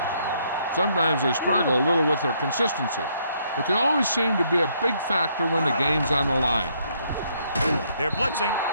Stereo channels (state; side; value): inverted; both; correlation -0.70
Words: Sometimes they struggle a little with their consistency, but they always seem to be a big factor when the game's on the line. They're blitzing,